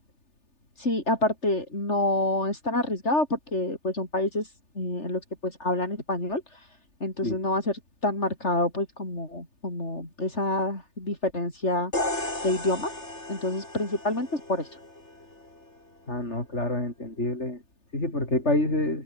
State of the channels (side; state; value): right; late; 3.4 ms